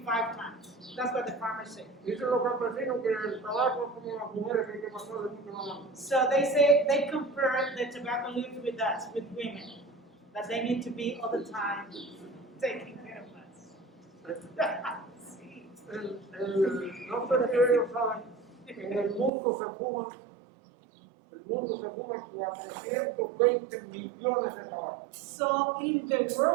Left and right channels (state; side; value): drops out; left; at 19.3 s